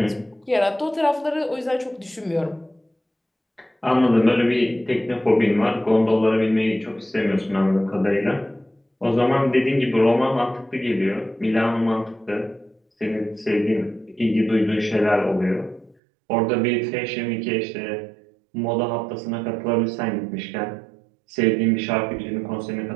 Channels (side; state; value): left; drops out; at 16.0 s